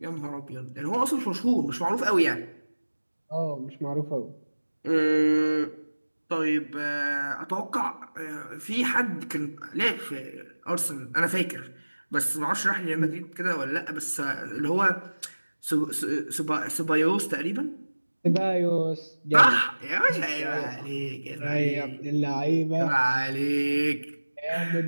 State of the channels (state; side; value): inverted; both; correlation -1.00